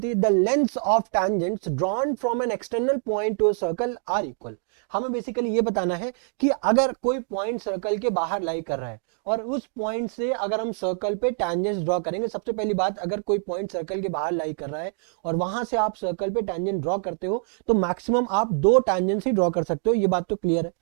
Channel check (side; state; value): left; silent; 58 dB below the other